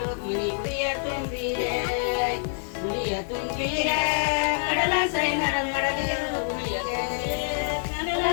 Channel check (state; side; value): silent; right; digital silence